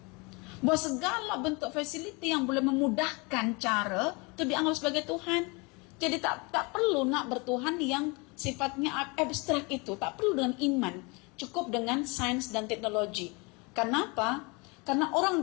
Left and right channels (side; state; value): right; quieter; 28.6 dB